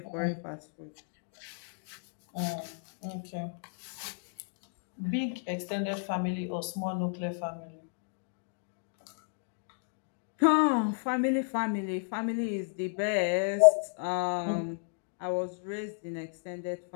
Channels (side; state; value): right; silent; digital silence